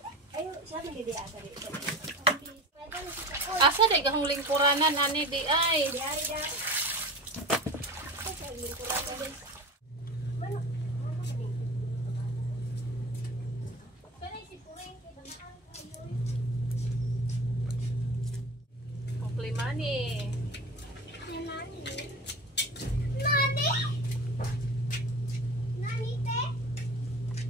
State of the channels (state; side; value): normal; both; correlation 0.34